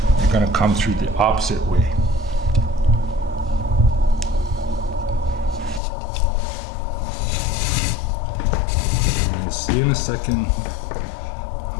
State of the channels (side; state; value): right; drops out; at 5.8 s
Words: you're going to come through the opposite way. See in a second